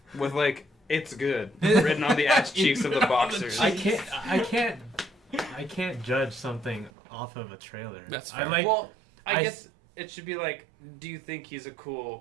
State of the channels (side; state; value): left; drops out; at 6.9 s